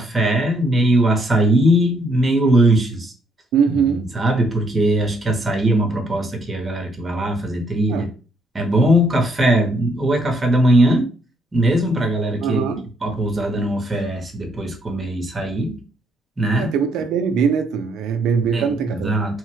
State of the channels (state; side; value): normal; both; correlation 0.70